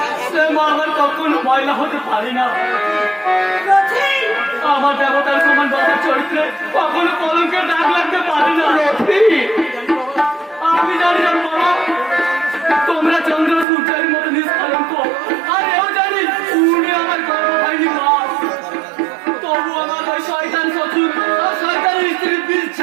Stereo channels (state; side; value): drops out; left; at 13.7 s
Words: সে মা আমার কখনো ময়লা হতে পারি না। আমার দেবতার সমান বাবার চরিত্রে কখনো কলঙ্কের দাগ লাগতে পারে না। আমি জানি না বাবা, তোমরা চন্দ্র সূর্যের মতো নিষ্কলঙ্ক, আর এও জানি উনি আমার গর্ব হয়নি মা। তবু আমার ওই শয়তান শ্বশুর আর শয়তানের স্ত্রীর বীজ